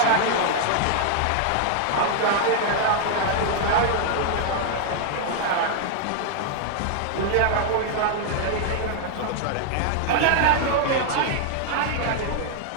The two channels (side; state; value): both; different; correlation 0.00